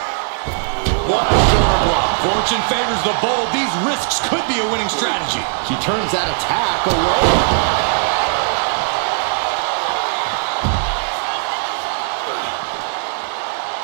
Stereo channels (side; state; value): left; silent; digital silence